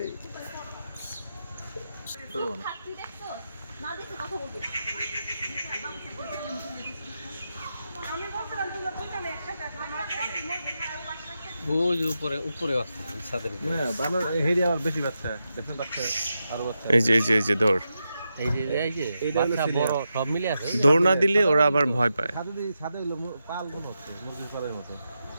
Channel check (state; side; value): inverted; both; correlation -0.88